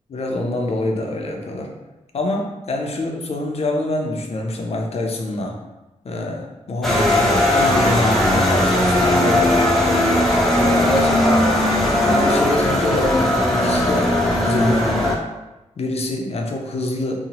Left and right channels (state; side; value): normal; both; correlation 0.68